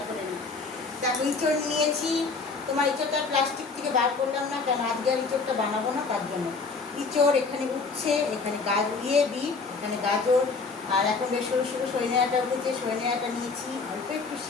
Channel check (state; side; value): quieter; right; 4.4 dB